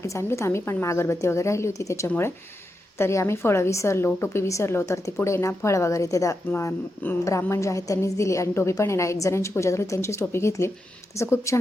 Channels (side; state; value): both; normal; correlation 0.86